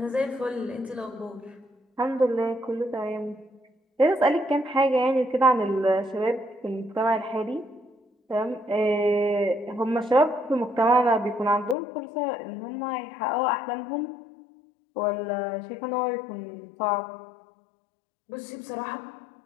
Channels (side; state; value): right; drops out; at 11.8 s